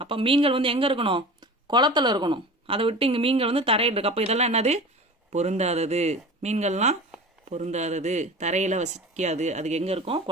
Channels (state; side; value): normal; both; correlation 0.36